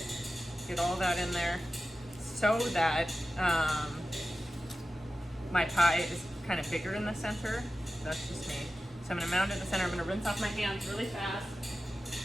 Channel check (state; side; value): normal; both; correlation 0.94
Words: get all that in there so that my pie is kind of bigger in the center. That's just me. So I'm gonna mound it in the center. I'm gonna rinse off my hands really fast.